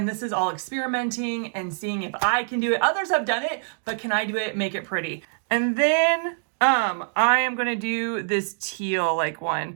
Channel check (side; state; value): left; silent; digital silence